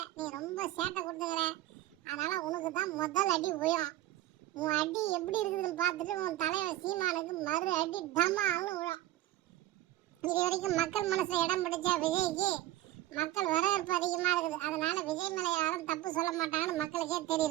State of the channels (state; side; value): quieter; left; 15.0 dB